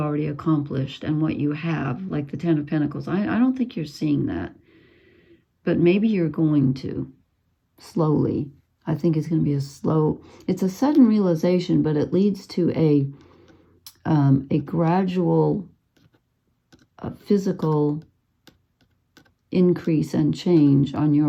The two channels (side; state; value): both; identical; correlation 1.00